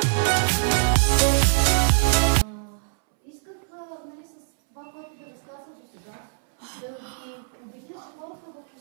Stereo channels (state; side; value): silent; left; 62 dB below the other